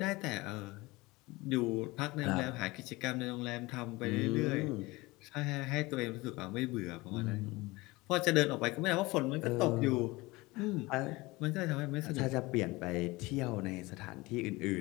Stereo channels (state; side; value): quieter; right; 21.9 dB